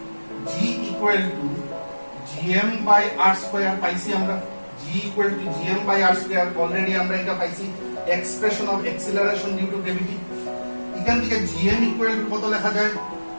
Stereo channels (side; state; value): both; inverted; correlation -1.00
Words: g equal to gm by r square পাইছি আমরা, g equal to gm by r square. Already আমরা এটা পাইছি expression of acceleration due to gravity. এখান থেকে gm ইকুয়াল টু কত লেখা যায়,